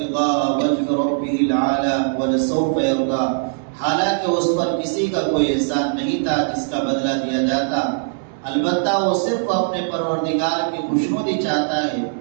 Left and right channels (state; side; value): silent; left; digital silence